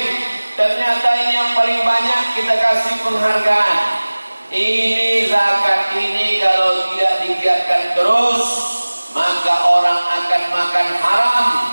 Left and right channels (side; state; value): both; inverted; correlation -1.00